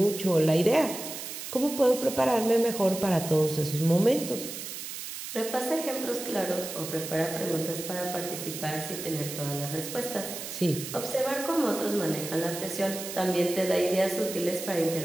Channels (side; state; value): right; noise; hiss, 8 dB below the sound